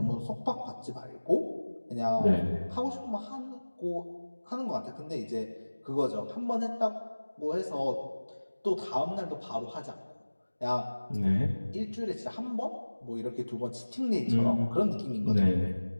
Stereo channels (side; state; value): both; inverted; correlation -1.00